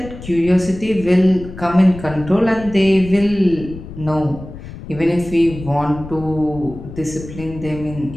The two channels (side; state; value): left; noise; rumble, 13 dB below the sound